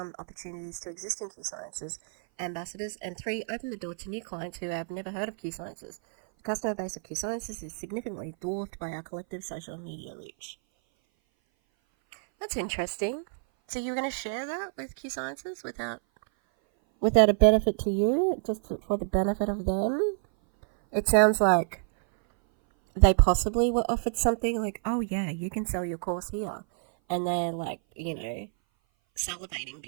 opportunities to existing QSciences ambassadors, and 3, open the door to new clients who have never heard of QSciences. The customer base of QSciences is significantly dwarfed by our collective social media reach. That's interesting. So you're going to share that with QSciences without a benefit to you, just for the benefit of them? It sounds like they possibly were offered something like, oh yeah, you can sell your course here. And they're like, salivating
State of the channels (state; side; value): silent; left; 57 dB below the other